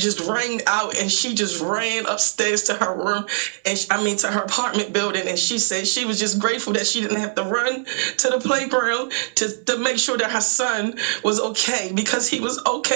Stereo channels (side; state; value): left; silent; digital silence